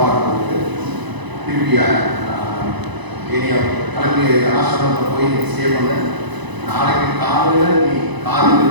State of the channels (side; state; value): left; late; 1.0 ms